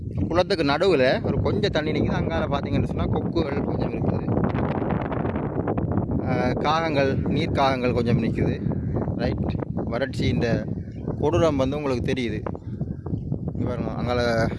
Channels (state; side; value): identical; both; correlation 1.00